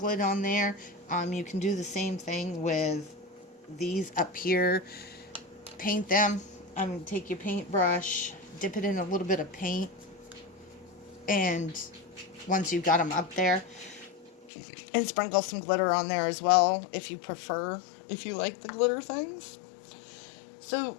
it on there. You can do the same thing with these up here. Paint them. Take your paintbrush, dip it in a little bit of paint, and once you've got them up there, and sprinkle some glitter on there as well, if you prefer, if you like the glitter things. So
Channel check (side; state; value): right; drops out; at 14.5 s